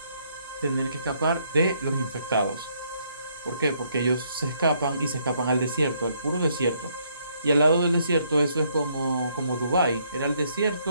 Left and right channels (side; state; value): both; inverted; correlation -0.71